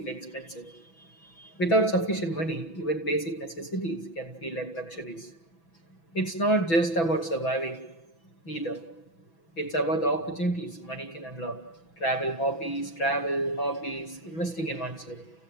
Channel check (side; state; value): right; late; 6.0 ms